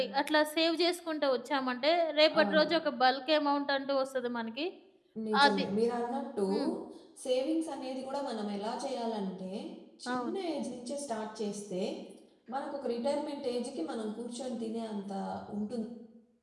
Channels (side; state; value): both; identical; correlation 1.00